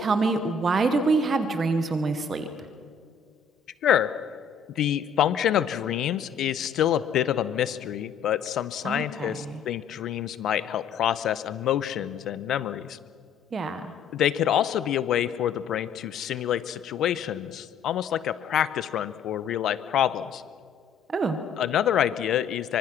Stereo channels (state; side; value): quieter; right; 5.3 dB